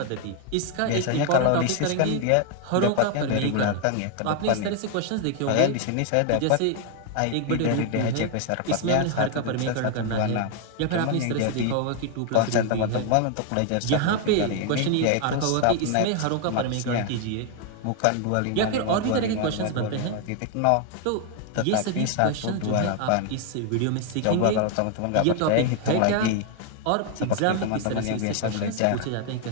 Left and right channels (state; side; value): different; both; correlation 0.00